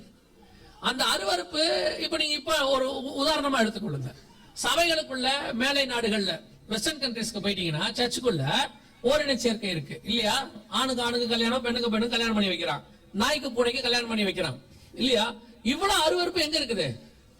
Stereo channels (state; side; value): identical; both; correlation 1.00